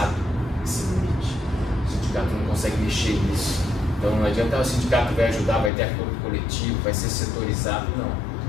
esse limite. O sindicato não consegue mexer nisso. Então não adianta o sindicato vai ajudar, vai ter acordo coletivo, vai ser setorizado, não.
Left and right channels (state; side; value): drops out; right; at 5.7 s